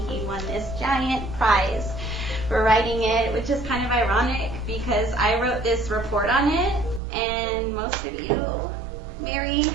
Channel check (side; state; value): left; drops out; at 7.0 s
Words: he won this giant prize for writing it, which is kind of ironic because I wrote this report on it, and most of you, Mary